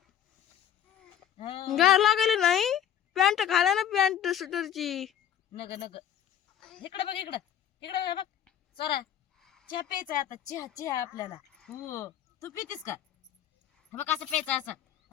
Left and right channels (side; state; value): right; quieter; 10.1 dB